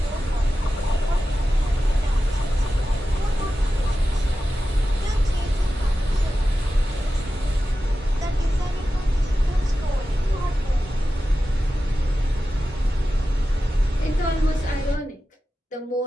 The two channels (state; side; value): normal; both; correlation 0.93